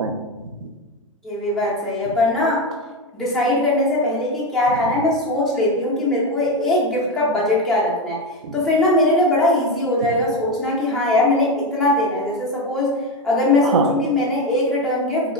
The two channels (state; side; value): normal; both; correlation 0.14